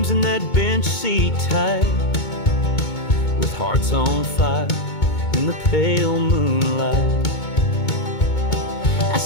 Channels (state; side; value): late; right; 2.2 ms